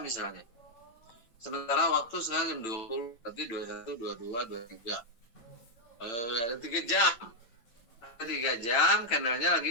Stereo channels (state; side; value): late; right; 9.0 ms